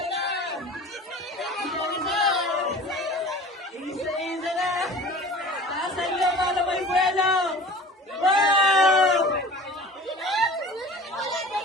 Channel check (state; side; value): normal; both; correlation 0.41